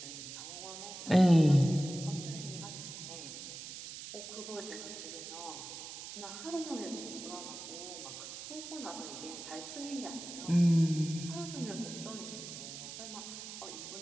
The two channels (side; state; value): right; noise; hiss, 10 dB below the sound